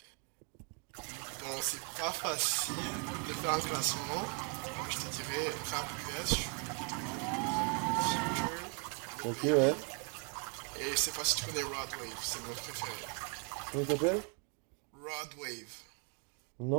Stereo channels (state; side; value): quieter; left; 37.7 dB